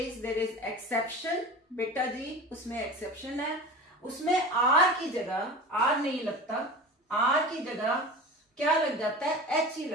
there is exception. बेटा जी, उसमें एक्सेप्शन है। उसमें R की जगह R नहीं लगता, R की जगह क्या लग जाता है, H ही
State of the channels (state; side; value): normal; both; correlation 0.34